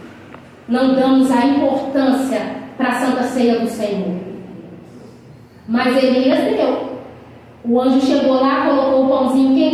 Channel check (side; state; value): both; identical; correlation 1.00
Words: não damos a importância para a Santa Ceia do Senhor. Mas Elias deu. O anjo chegou lá, colocou o pãozinho